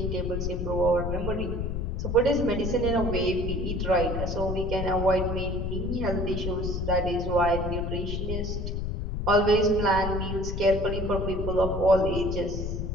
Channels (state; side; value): noise; left; rumble, 3 dB below the sound